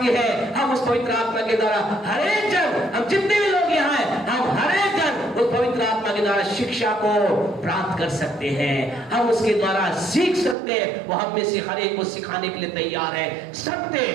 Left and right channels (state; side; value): drops out; left; at 10.6 s